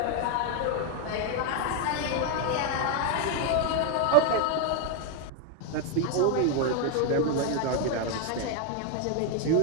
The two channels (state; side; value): different; both; correlation 0.01